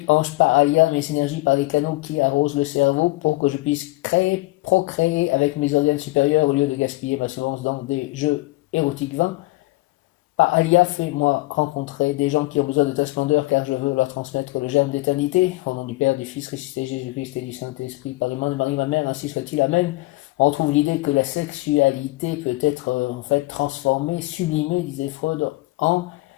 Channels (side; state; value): right; quieter; 21.0 dB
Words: ange Palia, mes énergies par les canaux qui arrosent le cerveau, pour que je puisse procréer avec mes organes supérieurs au lieu de gaspiller ma semence dans des jeux érotiques vains. Palia, fais-moi rencontrer des gens qui ont besoin de ta splendeur, car je veux leur transmettre le germe d'éternité. Au nom du Père, du Fils ressuscité, Jésus-Christ et du Saint-Esprit, par les mains de Marie ma mère, ainsi soit-il. Amen. On trouve l'idée que la sexualité peut être en fait transformée, sublimée, disait Freud, en